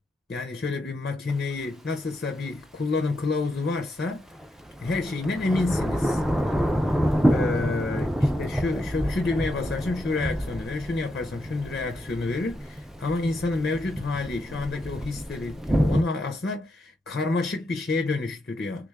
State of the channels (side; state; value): both; normal; correlation 0.82